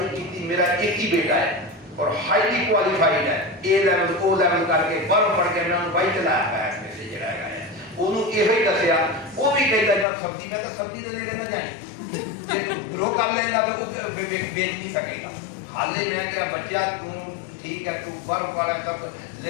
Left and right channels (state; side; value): drops out; right; at 10.1 s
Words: ਕੀਤੀ ਮੇਰਾ ਇੱਕ ਹੀ ਬੇਟਾ ਹੈ और हाईली क्वालिफाइड है ए लेवल ओ लेवल करके बाहर पढ़ के मैं बाई चलाया है ऐसे जड़ा है ओनू ਇਹੋ ਹੀ ਦੱਸਿਆ ਉਹ ਵੀ ਕਹਿੰਦਾ ਜਦ ਸਬਜ਼ੀ ਮੈਂ ਤਾਂ ਸਬਜ਼ੀ ਦੇ ਨੇੜੇ ਨਾ ਜਾਈਂ ਜੇ ਗਰੋ ਕਰ ਲੈਂਦਾ ਤਾਂ ਉਹ ਵੇਚ ਨਹੀਂ ਸਕੇਗਾ ਹਾਲੇ ਮੈਂ ਕਿਹਾ ਬੱਚਾ ਤੂੰ ਠੀਕ ਹੈ ਤੂੰ ਬਾਹਰ ਵਾਲਾ ਸਭ